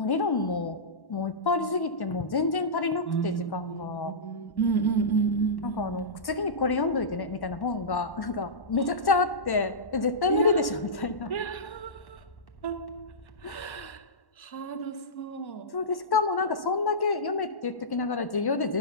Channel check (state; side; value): late; right; 1.1 ms